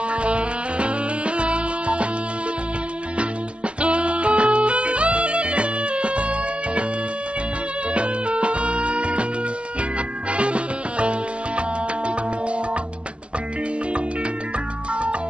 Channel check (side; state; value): left; late; 0.055 ms